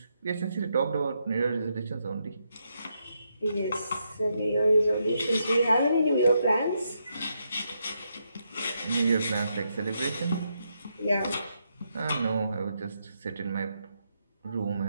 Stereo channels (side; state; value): both; inverted; correlation -0.81